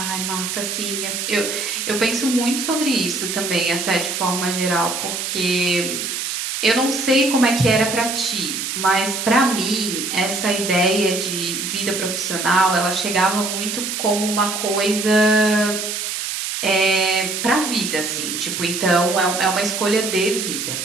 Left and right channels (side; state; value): right; noise; hiss, 3 dB below the sound